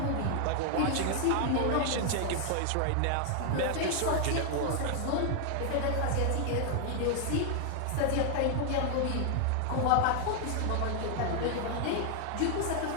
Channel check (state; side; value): different; both; correlation 0.00